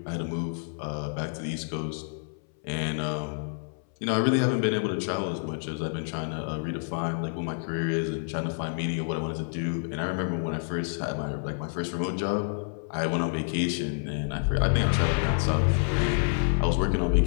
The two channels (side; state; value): right; silent; 59 dB below the other